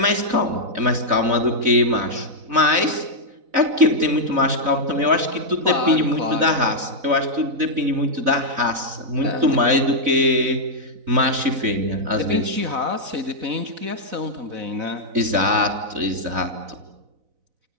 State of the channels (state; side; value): late; left; 4.0 ms